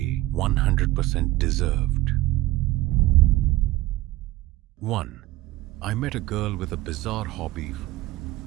100% deserved? 1. I met a girl with a bizarre hobby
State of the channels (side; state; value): left; quieter; 17.6 dB